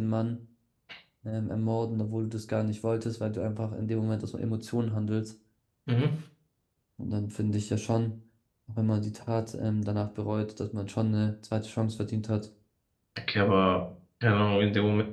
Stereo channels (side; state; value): both; identical; correlation 1.00